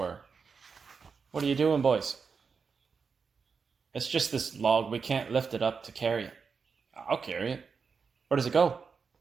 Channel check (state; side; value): quieter; left; 5.5 dB